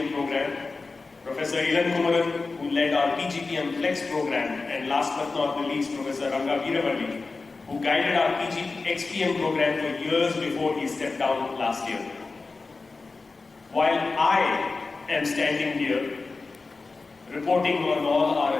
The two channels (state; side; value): quieter; right; 3.9 dB